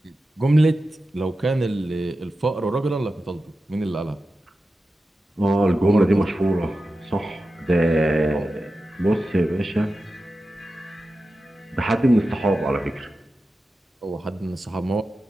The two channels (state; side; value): normal; both; correlation 0.92